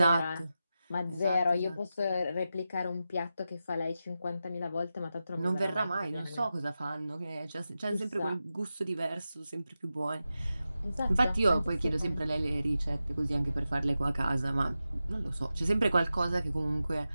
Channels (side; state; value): both; inverted; correlation -0.91